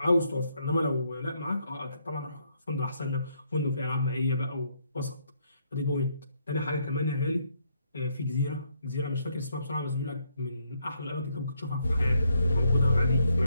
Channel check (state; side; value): inverted; both; correlation -0.73